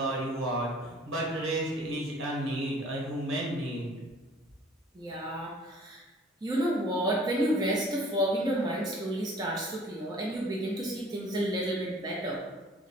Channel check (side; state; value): both; normal; correlation 0.52